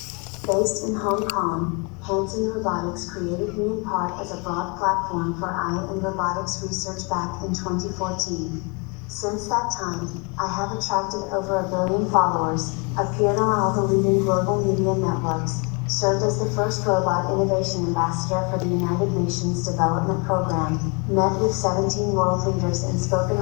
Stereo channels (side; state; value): right; quieter; 32.2 dB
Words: Based in Hong Kong, Hanson Robotics created me in part as a broad platform for AI and robotics research back in 2014. Since that time, I have attracted over 1 billion followers, appeared on all the leading global media networks, served as the first robot innovation ambassador for the United Nations Development Program, met with 17 world leaders and spoken